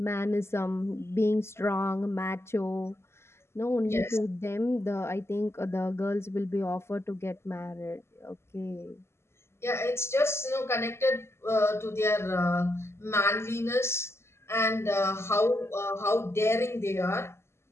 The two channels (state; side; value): late; right; 0.12 ms